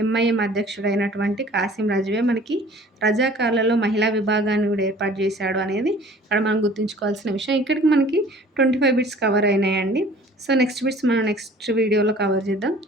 ఎంఐఎం అధ్యక్షుడైనటువంటి కాసిం రజ్వీయే మనకి రజాకార్లలో మహిళా విభాగాన్ని గూడా ఏర్పాటు చేశాడు అనేది ఇక్కడ మనం గుర్తుంచుకోవాల్సిన విషయం. ఇక్కడికి మనకి 25 బిట్స్ కవర్ అయినాయండి. సో, నెక్స్ట్ బిట్స్ మనం నెక్స్ట్ వీడియోలో కవర్ చేద్దాం.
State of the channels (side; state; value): both; normal; correlation 0.50